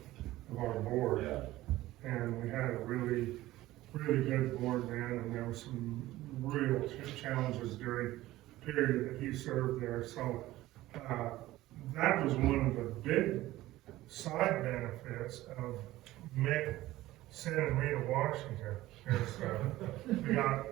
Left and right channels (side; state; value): left; quieter; 16.5 dB